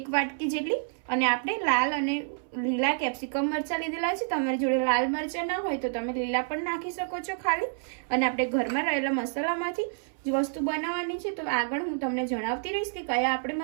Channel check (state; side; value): silent; left; 59 dB below the other